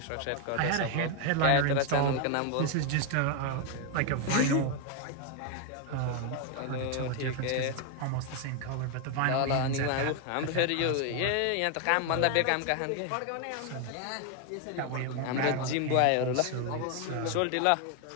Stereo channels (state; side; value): different; both; correlation 0.01